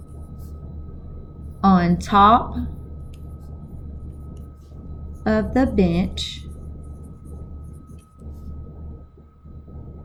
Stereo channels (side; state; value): both; identical; correlation 1.00